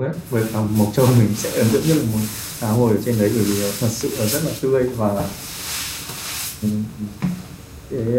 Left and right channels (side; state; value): both; identical; correlation 1.00